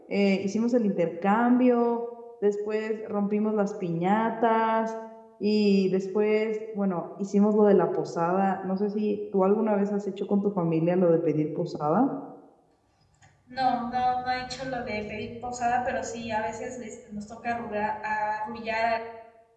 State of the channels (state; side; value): identical; both; correlation 1.00